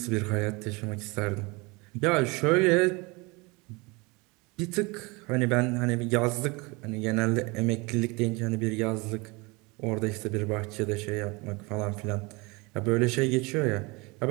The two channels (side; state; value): left; quieter; 26.4 dB